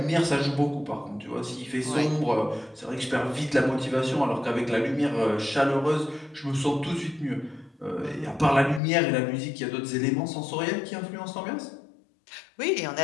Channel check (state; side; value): drops out; right; at 8.8 s